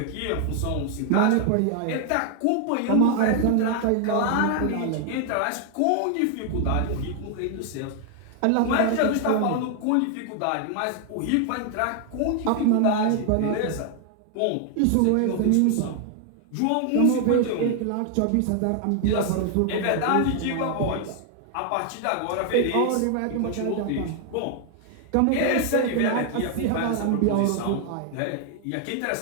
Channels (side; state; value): both; different; correlation 0.00